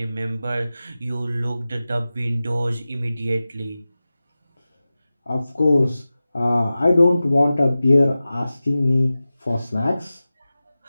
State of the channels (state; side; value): inverted; both; correlation -0.95